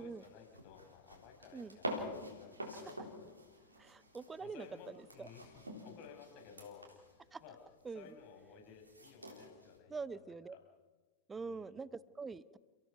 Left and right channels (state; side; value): normal; both; correlation 0.14